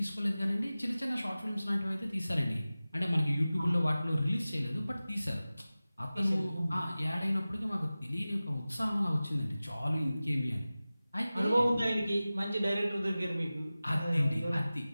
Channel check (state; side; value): inverted; both; correlation -0.96